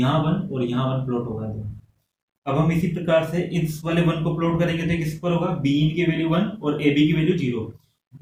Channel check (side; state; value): both; identical; correlation 1.00